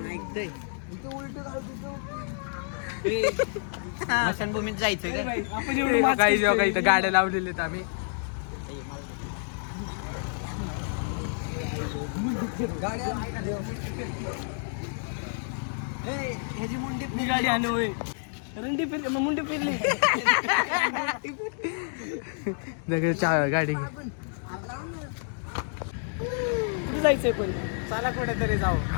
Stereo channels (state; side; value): silent; right; digital silence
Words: ऐकतोय. स्मशानभूमीत जायचं का? आपण एवढं काही इथं गाड्या लावलेल्या आहेत आम्ही. ह्याची मुंडी गाडी आली होय. रंडी फिरली, मग मुंडी फिरली. गाडी कुठे जायचंय पण? चला कुठेतरी जाऊ.